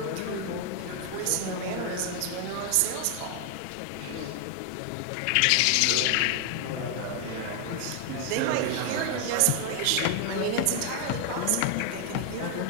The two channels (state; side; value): different; both; correlation 0.00